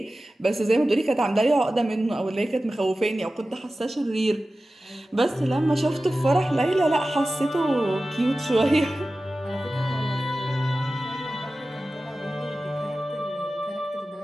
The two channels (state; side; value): normal; both; correlation 0.95